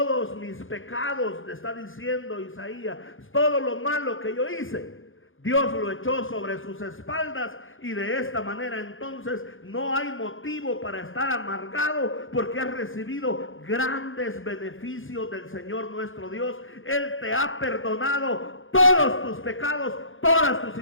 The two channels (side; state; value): right; late; 0.58 ms